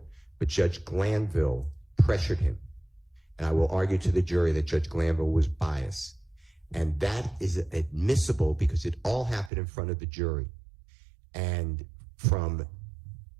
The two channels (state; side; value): drops out; left; at 9.5 s